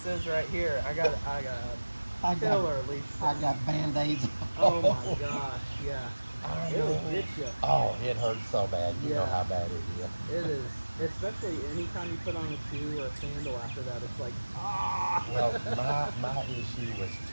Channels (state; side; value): inverted; both; correlation -1.00